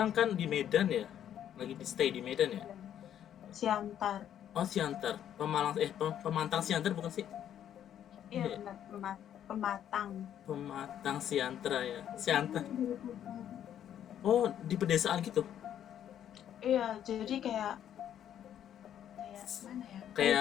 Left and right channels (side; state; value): right; quieter; 10.2 dB